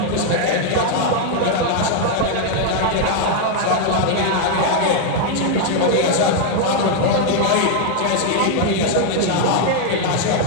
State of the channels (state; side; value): different; both; correlation 0.00